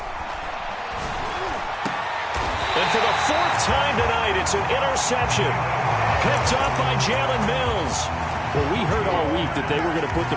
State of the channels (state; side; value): identical; both; correlation 1.00